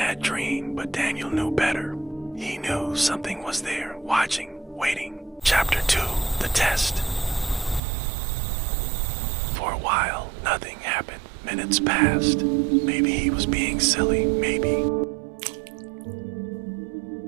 dream, but Daniel knew better. He knew something was there, watching, waiting. Chapter 2, The Test. For a while, nothing happened. Minutes passed. Maybe he was being silly, maybe.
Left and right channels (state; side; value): drops out; left; at 7.8 s